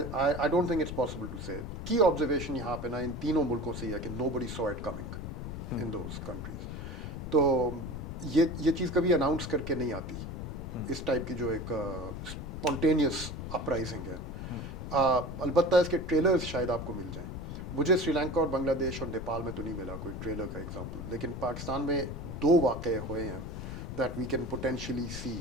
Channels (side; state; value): left; noise; rumble, 7 dB below the sound